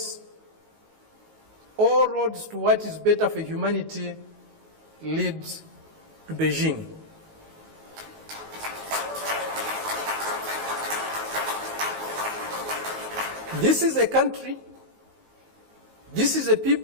all roads to what is better for humanity leads to Beijing. This is a country, this is a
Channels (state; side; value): late; left; 19 ms